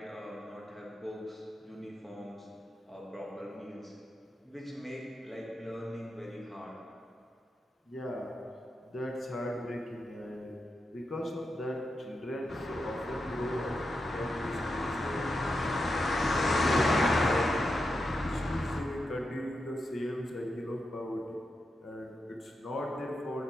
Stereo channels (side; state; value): both; normal; correlation 0.87